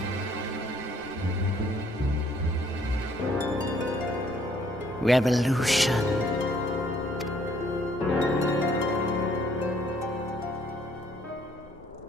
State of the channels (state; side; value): normal; both; correlation 0.63